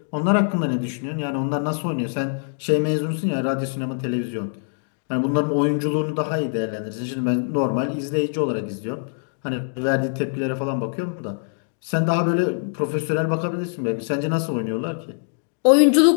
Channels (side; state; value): right; silent; digital silence